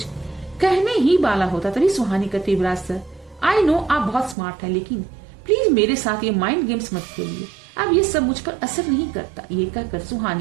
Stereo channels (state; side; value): drops out; left; at 4.4 s